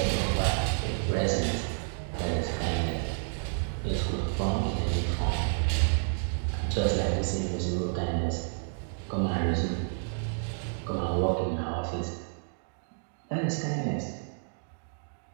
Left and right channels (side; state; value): left; silent; digital silence